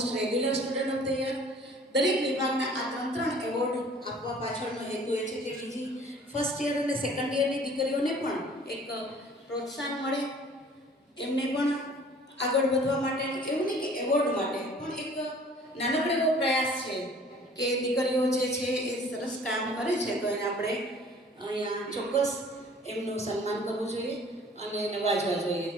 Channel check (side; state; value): both; normal; correlation 0.51